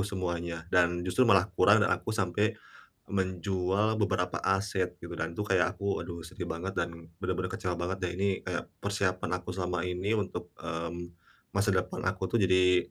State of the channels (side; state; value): both; identical; correlation 1.00